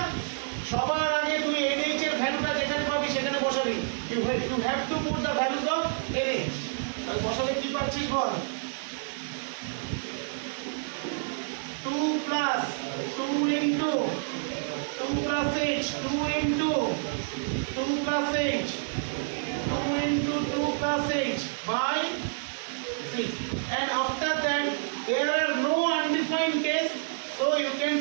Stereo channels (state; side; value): silent; left; 59 dB below the other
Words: সবার আগে তুমি nh এর ভ্যালুটা যেখানে পাবি সেখানে বসাবি। You have to put the values of nh। তাহলে বসালে কি পাচ্ছিস বল? 2 plus 2 into 2 plus h, 2 into 2 plus h, 2 into 2 plus h by 6. And after that there are no undefined case, so you can